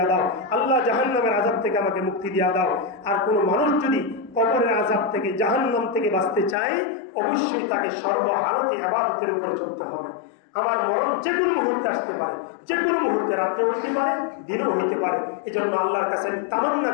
দাও, আল্লাহ জাহান্নামের আযাব থেকে আমাকে মুক্তি দিয়া দাও। আর কোনো মানুষ যদি কবরের আযাব থেকে, জাহান্নাম থেকে বাঁচতে চায়, অবশ্যই তাকে সর্বহালতে ইবাদতের উপরে চলতে হবে। আমার মরণ যে কোনো মুহূর্তে আসতে পারে, যে কোনো মুহূর্তে, রাত্রে হইতে পারে, দিনও হইতে পারে। এই জন্য আল্লাহর কাছে আমি তামান্না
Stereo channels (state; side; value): drops out; right; at 6.6 s